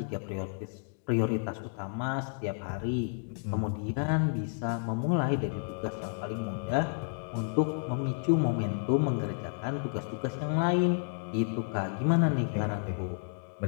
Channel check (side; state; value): right; silent; digital silence